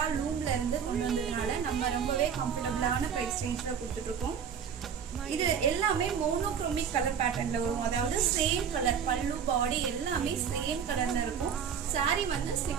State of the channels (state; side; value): quieter; left; 7.4 dB